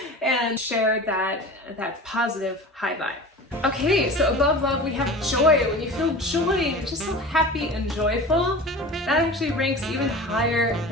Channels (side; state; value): both; normal; correlation 0.35